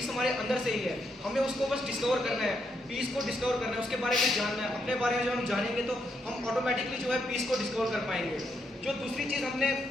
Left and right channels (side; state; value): both; normal; correlation 0.78